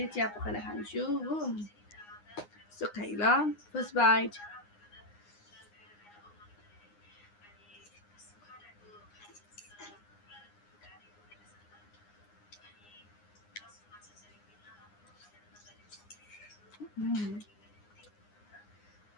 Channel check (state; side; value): late; right; 9.7 ms